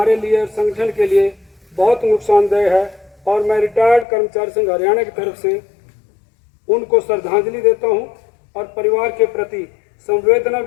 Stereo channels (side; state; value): right; drops out; at 4.0 s